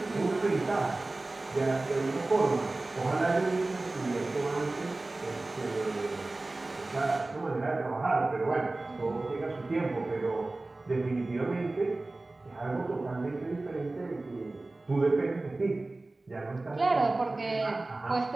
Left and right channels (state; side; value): quieter; left; 3.0 dB